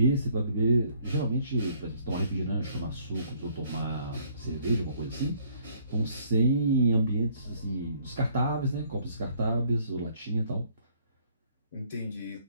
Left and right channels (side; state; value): both; inverted; correlation -0.63